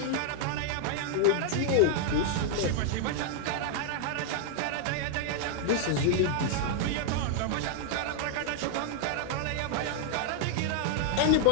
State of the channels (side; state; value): both; different; correlation 0.00